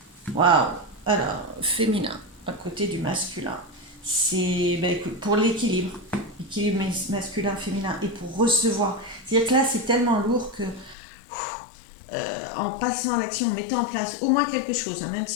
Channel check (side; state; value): right; drops out; at 11.0 s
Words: waouh. Alors, féminin, à côté du masculin, c'est ben, pour l'équilibre, l'équilibre masculin-féminin et pour recevoir. C'est-à-dire que là c'est tellement lourd que en passant à l'action, en mettant en place au moins quelque chose, hein, même